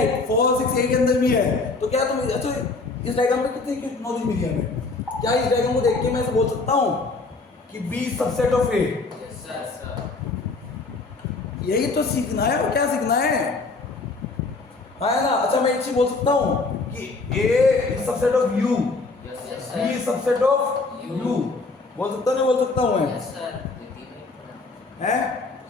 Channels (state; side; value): quieter; right; 3.7 dB